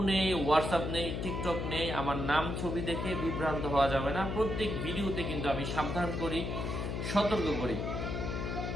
নেই, হোয়াটসঅ্যাপ নেই, টিকটক নেই। আমার নাম ছবি দেখে বিভ্রান্ত হওয়া যাবে না। প্রত্যেক ভিডিওতে কিন্তু আমি সাবধান করি, সতর্ক করি।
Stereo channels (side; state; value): left; noise; hum, 3 dB below the sound